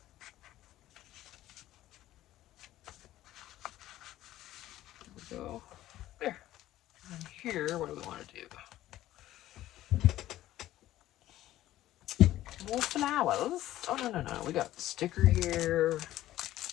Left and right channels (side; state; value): right; quieter; 14.5 dB